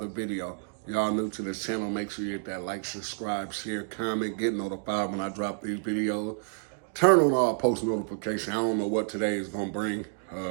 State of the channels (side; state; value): left; silent; digital silence